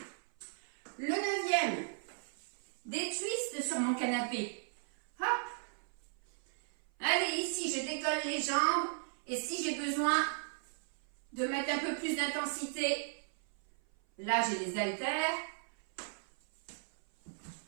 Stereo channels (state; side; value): silent; left; 53 dB below the other